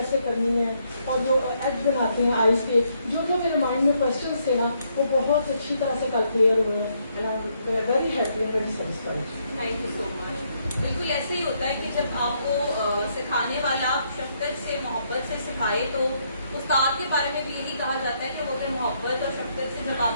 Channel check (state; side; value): inverted; both; correlation -0.74